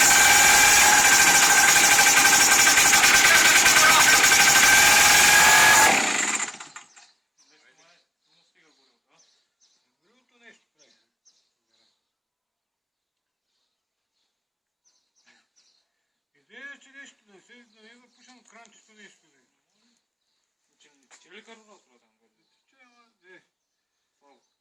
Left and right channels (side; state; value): both; identical; correlation 1.00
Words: Горилото нещо прави. Идея, че нещо да се да не запушам кранчето нещо. Че ли карурал това там? Че, ама, де.